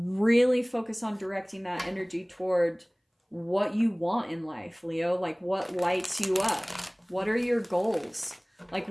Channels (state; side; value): identical; both; correlation 1.00